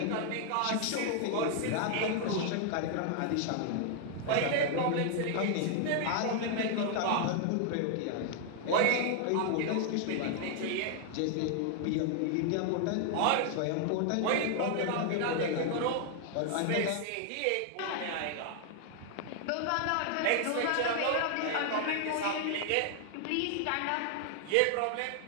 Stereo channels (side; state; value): both; different; correlation 0.00